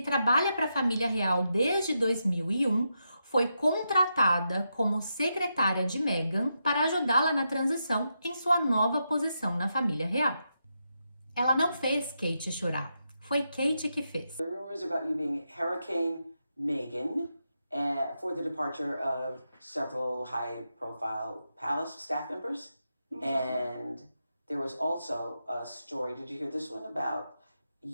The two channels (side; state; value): both; inverted; correlation -0.85